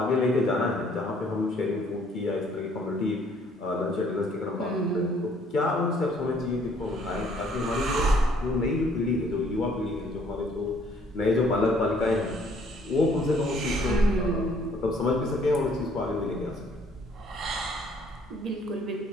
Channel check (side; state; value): both; normal; correlation 0.62